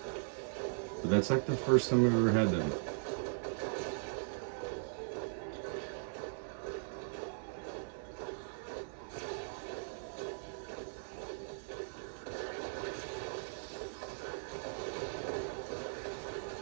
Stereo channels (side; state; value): left; silent; 52 dB below the other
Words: But that's like the first time I've ever had them.